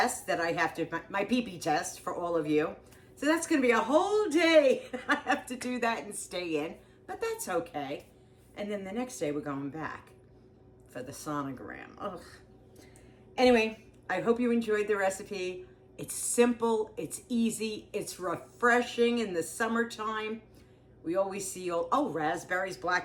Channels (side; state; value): both; identical; correlation 1.00